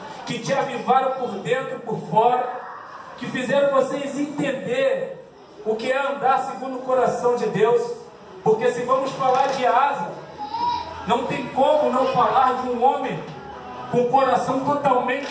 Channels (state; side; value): identical; both; correlation 1.00